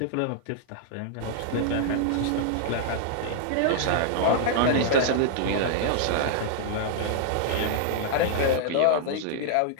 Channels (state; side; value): different; both; correlation -0.01